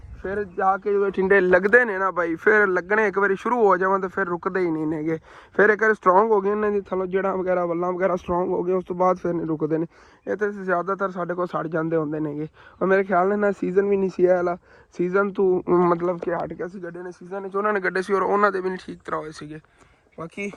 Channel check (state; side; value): identical; both; correlation 1.00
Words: फिर जाके जो टिंडे लगते ने ना भाई, फिर लगने एक बार शुरू हो जावन तो फिर रुकते ही नहीं नेगे। फिर एक बार स्ट्रोंग हो गए इन्हों की थलो जड़ा वगैरह वल्लां वगैरह स्ट्रोंग हो गए, उस तो बाद फिर नहीं रुकते हैं। ये तो ज़्यादातर साढ़े को सड़ जाते होंगे नेगे। और मेरे ख्याल ने ना सीजन भी नहीं सी वाला, सीजन तो मतलब कि हट गया सी गड्ढे ने, सीजन उन्होंने गड्ढे से और उन्होंने भी नहीं ठीक तरह होए सीगे। बाकी